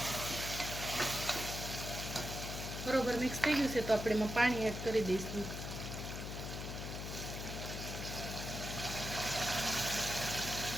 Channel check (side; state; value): left; noise; hum, 5 dB below the sound